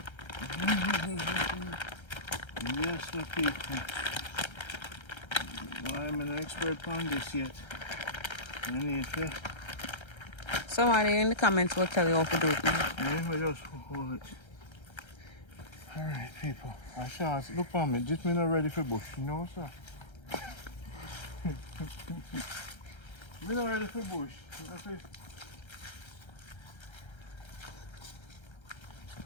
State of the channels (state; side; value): late; right; 1.3 ms